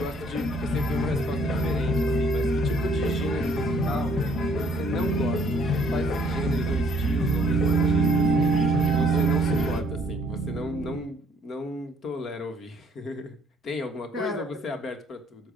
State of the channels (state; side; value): normal; both; correlation 0.63